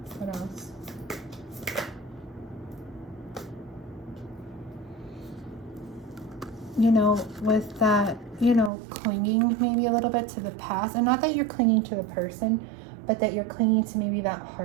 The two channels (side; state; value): left; drops out; at 8.7 s